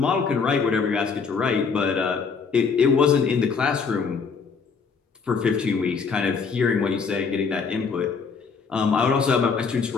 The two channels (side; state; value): right; quieter; 5.4 dB